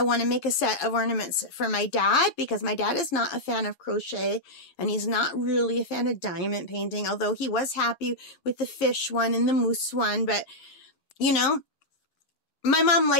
want to make a set of ornaments for my dad because my dad is not a fan of crochet and he's not really a fan of diamond painting, although he was happy with the fish one and the moose one. But, you know, my mom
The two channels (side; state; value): right; late; 7.2 ms